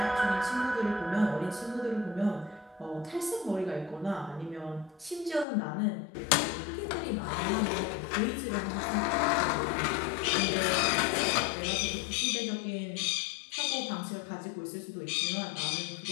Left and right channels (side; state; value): right; drops out; at 5.5 s